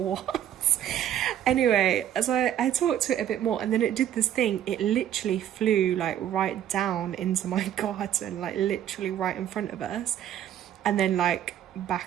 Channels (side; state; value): left; quieter; 10.7 dB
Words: Anyway, so I talked to it a bit more, and then it did this thing. It literally flew like right down into my garden, like literally right in front of us, and then like